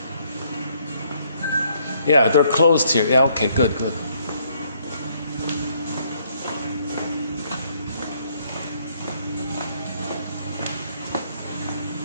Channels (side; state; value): both; inverted; correlation -0.68